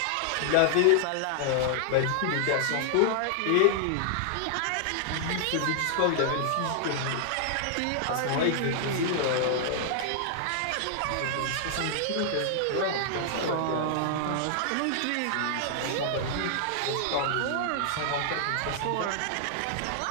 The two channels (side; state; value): both; different; correlation -0.01